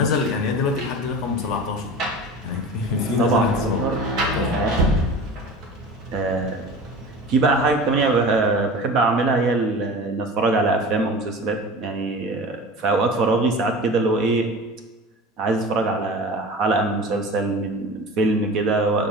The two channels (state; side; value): normal; both; correlation 0.35